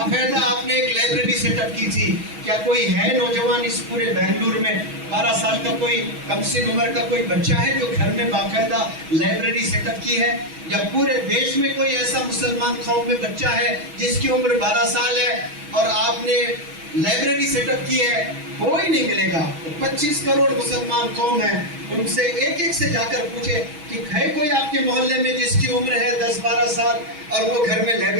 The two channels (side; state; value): left; late; 6.2 ms